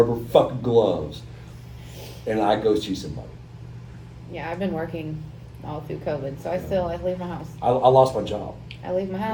fucking gloves, and I go see somebody. Yeah, I've been working all through COVID, so I leave my house. I lost my job. I leave my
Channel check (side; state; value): both; identical; correlation 1.00